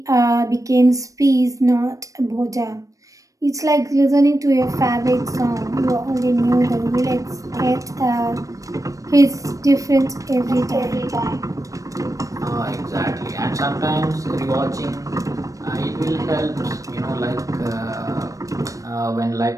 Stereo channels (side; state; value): left; late; 0.16 ms